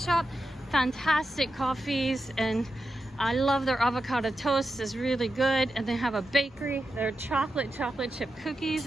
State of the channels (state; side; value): normal; both; correlation 0.89